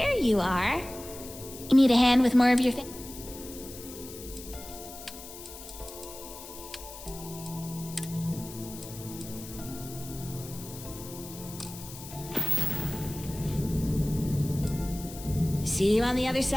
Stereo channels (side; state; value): left; noise; hiss, 14 dB below the sound